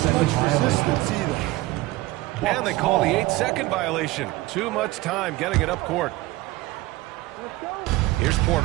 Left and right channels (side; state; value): left; quieter; 19.1 dB